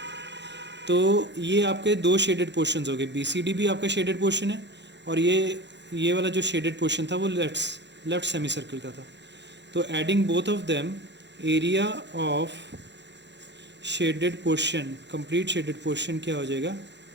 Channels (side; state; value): left; late; 0.52 ms